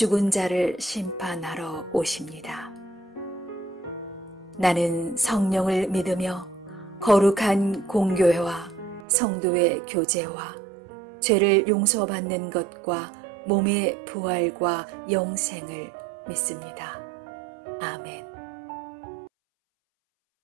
자를 심판하러 오십니다. 나는 성령을 믿으며 거룩한 공교회와 성도의 교제와 죄를 용서받는 것과 몸의 부활과 영생을 믿습니다. 아멘.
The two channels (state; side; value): drops out; left; at 9.1 s